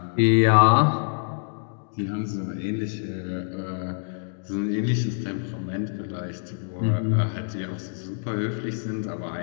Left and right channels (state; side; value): silent; right; digital silence